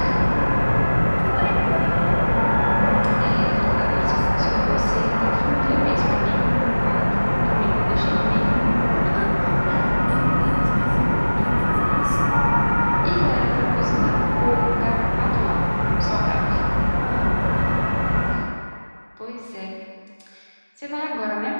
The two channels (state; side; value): inverted; both; correlation -1.00